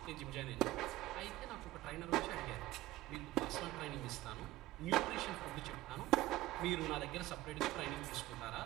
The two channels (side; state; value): left; quieter; 16.7 dB